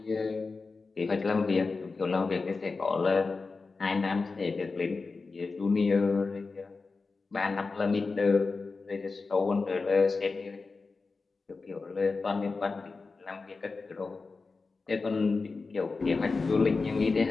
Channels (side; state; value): right; quieter; 4.1 dB